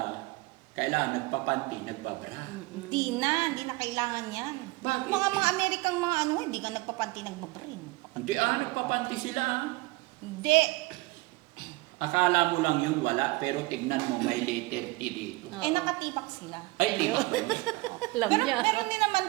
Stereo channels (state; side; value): quieter; left; 22.7 dB